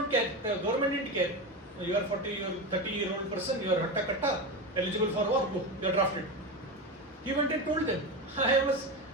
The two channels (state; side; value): normal; both; correlation 0.19